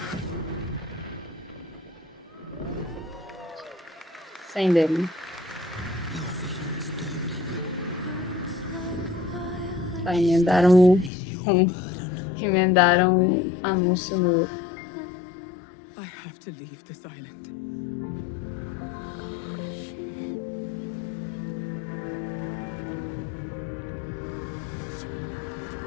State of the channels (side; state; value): right; drops out; at 11.1 s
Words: Sem demo. Tá, emendaram anúncio no. I have to leave this island.